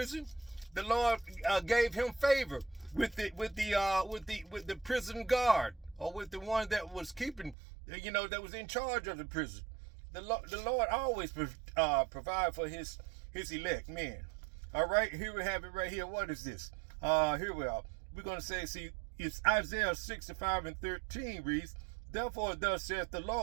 The Lord gave him favor with the prison guard, or with the one that was keeping, that was in charge of the prison. The Lord always provide for his elect men. All right, here we have it right here. What is this? Here we are. We're going to say, see, it's Isaiah 65 and 13 reads, therefore thus saith the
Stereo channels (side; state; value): left; drops out; at 7.6 s